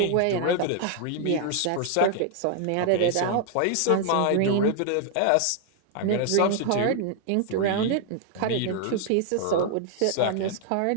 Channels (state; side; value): different; both; correlation 0.00